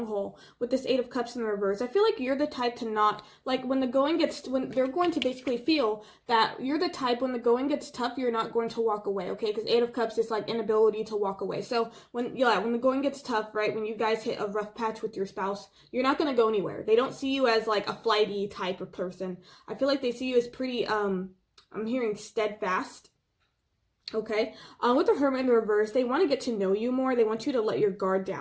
haul with this Eight of Cups in the reverse. I feel like you're the type to not, like when they're going to basically feel that you're the type when the going gets tough, you're not going to walk away, okay? Because Eight of Cups is like inability to walk away. So when the going gets tough, right, when you guys hit a rough patch with your spouse, you're not going to go anywhere. They don't see you as like a flighty type of person. I feel like they see you as pretty, I'm hearing steadfast. Okay, with the Hermit in the reverse, they want to get to know you more. They want you to let your guard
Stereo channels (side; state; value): both; identical; correlation 1.00